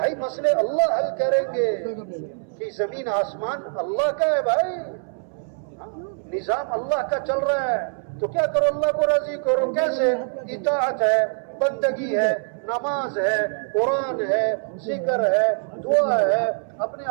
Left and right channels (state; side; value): silent; left; 63 dB below the other